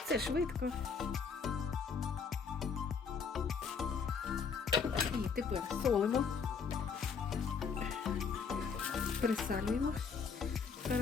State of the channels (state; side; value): quieter; right; 5.7 dB